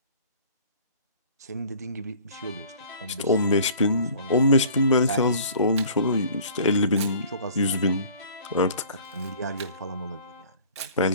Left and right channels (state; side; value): inverted; both; correlation -0.49